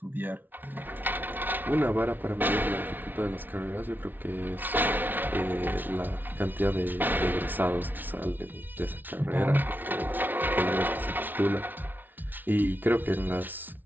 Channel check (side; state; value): left; late; 0.088 ms